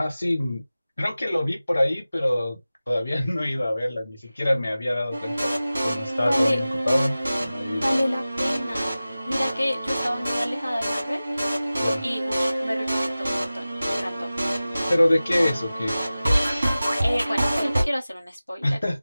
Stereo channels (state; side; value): inverted; both; correlation -0.96